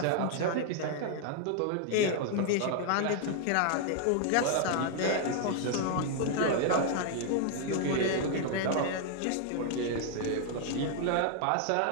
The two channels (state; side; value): different; both; correlation 0.00